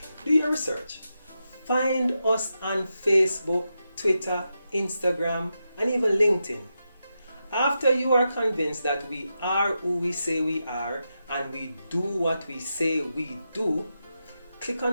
Do your research. Find us on Facebook, Twitter, Instagram, and even LinkedIn. After you are convinced that we are who we say we are and we do what we say we do, click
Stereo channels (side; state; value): both; inverted; correlation -0.88